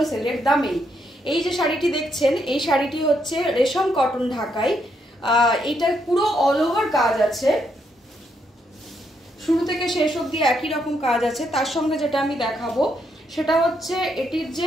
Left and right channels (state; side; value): normal; both; correlation 0.77